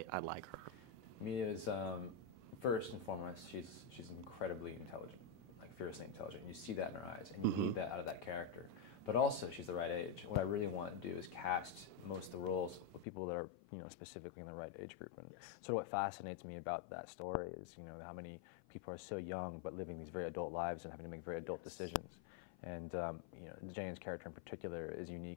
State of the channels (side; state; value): right; drops out; at 13.1 s